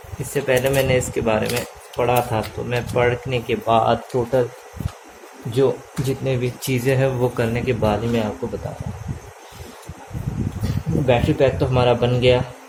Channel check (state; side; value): identical; both; correlation 1.00